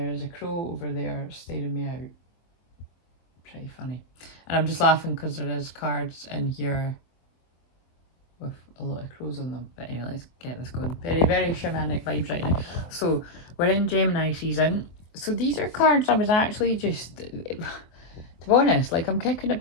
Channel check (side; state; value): right; late; 24 ms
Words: is a crow over there staring me out. Pretty funny. And I'm just laughing because there is cards in here with a lot of crows on them. But anyway, let's get this going. Very, very shamanic vibes right now. So we're in Gemini season. So these are cards I was actually just, to be honest, like I'm kicking